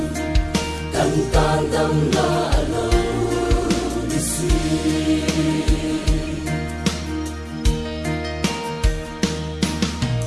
tan tan đầm la lâu đi suy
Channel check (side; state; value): both; identical; correlation 1.00